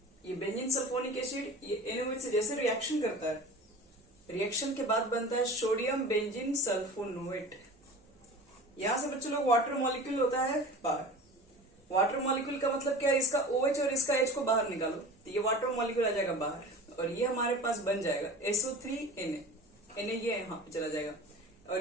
ये बेंजीन सल्फोनिक एसिड ये NaOH से जैसे रिएक्शन करता है, रिएक्शन के बाद बनता है सोडियम बेंजीन सल्फोनेट। यहां से बच्चों लोग वाटर मॉलिक्यूल होता है बाहर। वाटर मॉलिक्यूल का मतलब क्या है, इसका OH और इसका H को बाहर निकालो तो ये वाटर मॉलिक्यूल आ जाएगा बाहर और ये हमारे पास बन जाएगा SO3Na। ये यहां पे चला जाएगा और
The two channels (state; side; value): normal; both; correlation 0.37